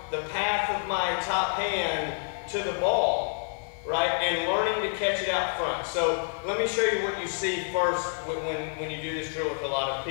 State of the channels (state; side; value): silent; right; 59 dB below the other